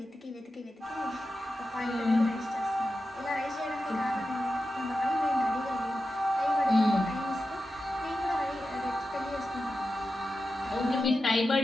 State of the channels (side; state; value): both; normal; correlation 0.91